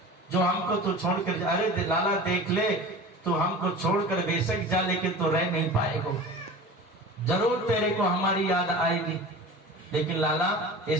जो हमको तू छोड़कर जा? अरे लाला देख ले, तू हमको छोड़कर बेशक जा लेकिन तू रह नहीं पाएगा। जरूर तेरे को हमारी याद आएगी, लेकिन लाला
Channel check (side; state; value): both; normal; correlation 0.36